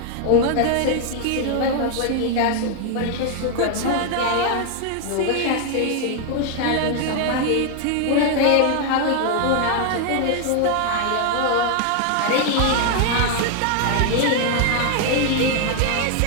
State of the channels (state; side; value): different; both; correlation 0.00